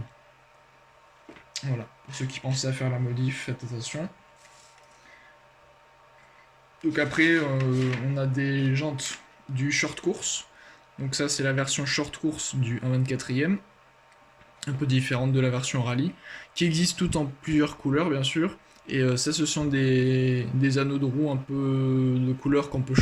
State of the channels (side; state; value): both; identical; correlation 1.00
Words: Voilà, pour ceux qui pensaient à faire la modif, faites attention. Donc après, on a des jantes du short course. Donc ça, c'est la version short course du 1/24e. Un peu différente de la version rallye, qui existe toutes en plusieurs couleurs bien sûr, et ça ce sont des anneaux de roue un peu de couleurs qu'on peut